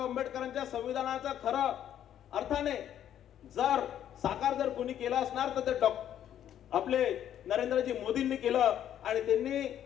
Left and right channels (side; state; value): right; quieter; 10.5 dB